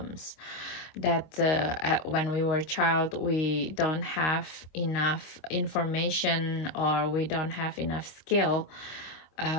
that when we were a child, we don't have enough information, or we don't have enough skill. We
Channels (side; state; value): right; late; 25 ms